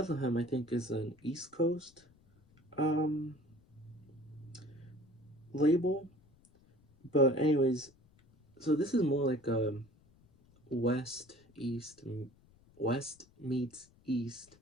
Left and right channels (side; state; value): left; noise; rumble, 29 dB below the sound